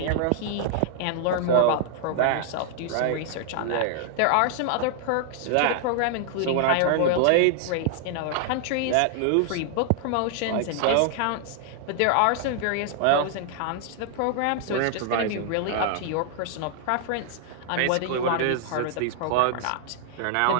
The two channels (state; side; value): different; both; correlation 0.00